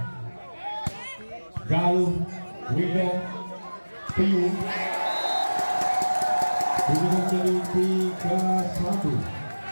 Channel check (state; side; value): inverted; both; correlation -1.00